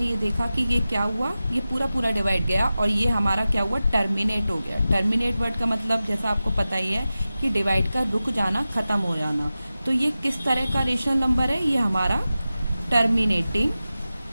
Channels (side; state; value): both; inverted; correlation -0.95